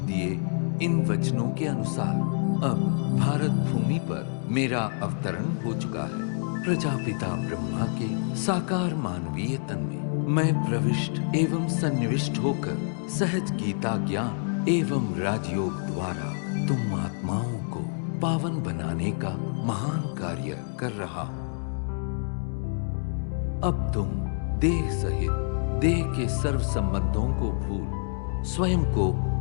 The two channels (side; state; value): right; silent; 60 dB below the other